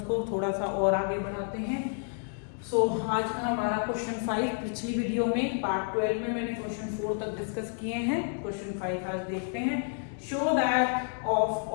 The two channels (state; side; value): silent; right; 58 dB below the other